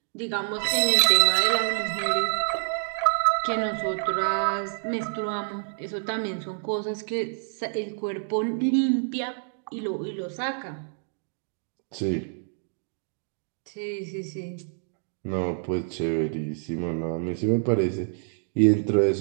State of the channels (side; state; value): left; silent; digital silence